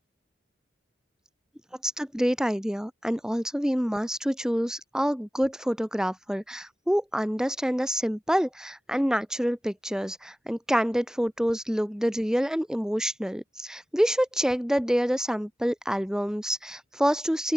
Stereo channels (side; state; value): both; normal; correlation 0.96